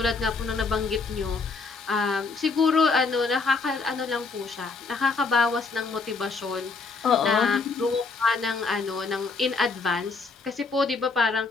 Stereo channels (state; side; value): quieter; right; 4.3 dB